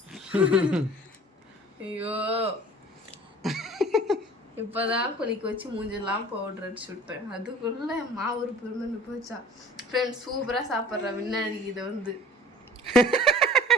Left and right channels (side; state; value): both; normal; correlation 0.47